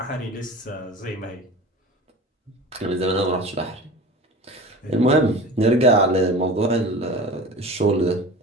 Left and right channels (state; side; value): normal; both; correlation 0.36